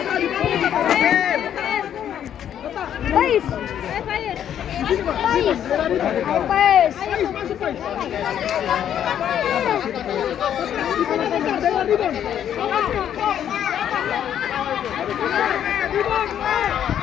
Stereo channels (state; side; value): quieter; right; 9.8 dB